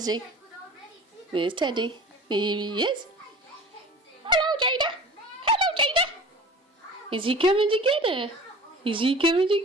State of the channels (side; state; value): both; normal; correlation 0.39